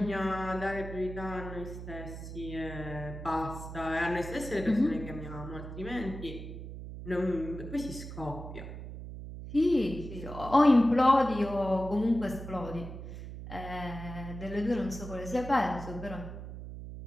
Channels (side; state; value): right; noise; hum, 10 dB below the sound